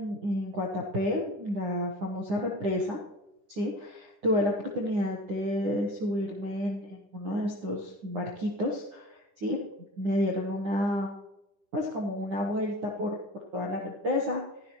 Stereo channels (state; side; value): late; left; 9.9 ms